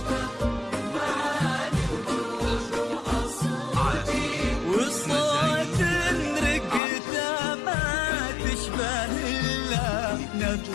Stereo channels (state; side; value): drops out; right; at 6.8 s